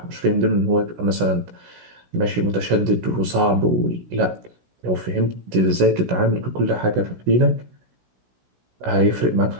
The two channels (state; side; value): late; left; 16 ms